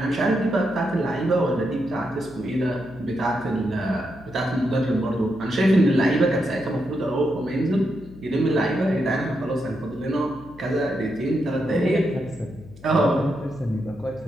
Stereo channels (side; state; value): left; noise; hum, 20 dB below the sound